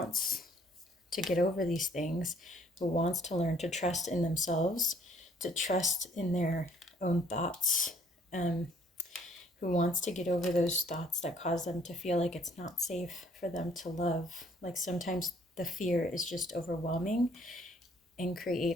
to get over these things, who wants to learn to trust in themselves, to trust in their own thoughts, who wants to get over those thoughts that cause them to feel like it's not safe for them to love. Like sometimes the fear is just overwhelming and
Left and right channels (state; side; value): normal; both; correlation 0.61